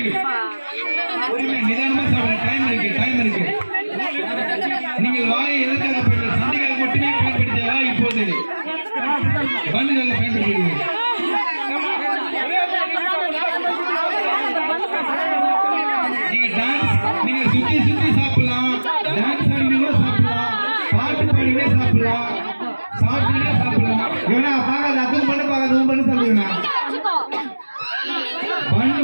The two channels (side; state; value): both; inverted; correlation -1.00